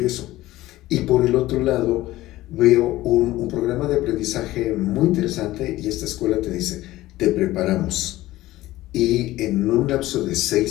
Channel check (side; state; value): right; quieter; 16.7 dB